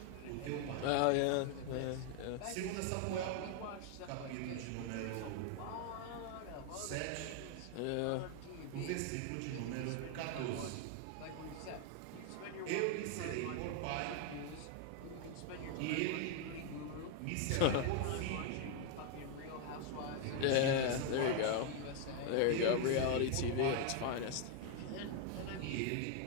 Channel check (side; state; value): both; different; correlation 0.01